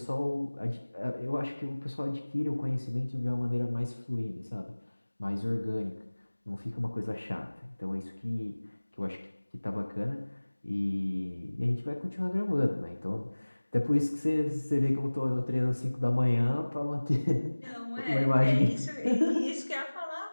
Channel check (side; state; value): both; inverted; correlation -1.00